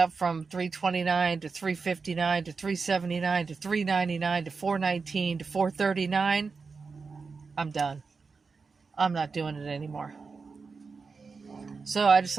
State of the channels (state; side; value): quieter; left; 4.7 dB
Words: from $3.29 to $3.59 to $3.79 to $3.99 to $4.19 to $4.39, I'm done. I'm not doing it anymore. So I